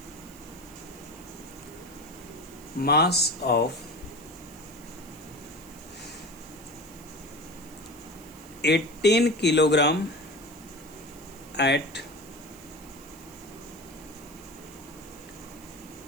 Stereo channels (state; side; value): noise; right; hiss, 21 dB below the sound